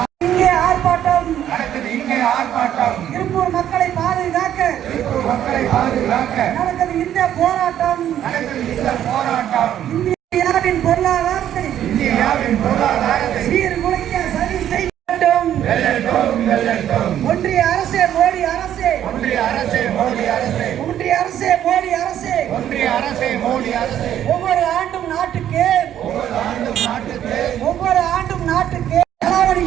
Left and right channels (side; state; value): left; quieter; 10.9 dB